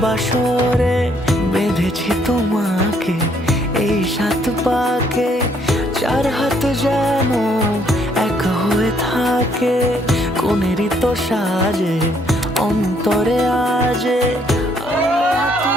বাসরে। বেঁধেছি তোমাকে এই 7 পাকে, 4 হাত যেন এক হয়ে থাকে। কোনেরই তো সাজে অন্তরে আজে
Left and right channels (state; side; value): normal; both; correlation 0.68